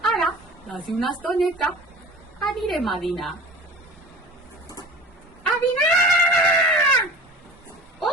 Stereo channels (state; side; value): normal; both; correlation 0.39